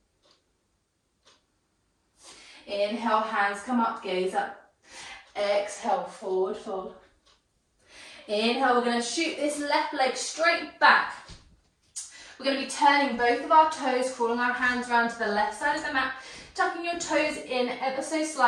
Inhale, hands come up, gaze up. Exhale, forward fold. Inhale, we're going to shoot this left leg straight back. We're going to be turning both of our toes, crawling our hands around to the left side of the mat, tucking your toes in ever so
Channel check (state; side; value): identical; both; correlation 1.00